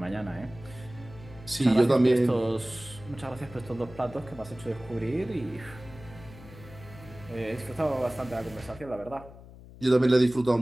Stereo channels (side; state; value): left; noise; hum, 18 dB below the sound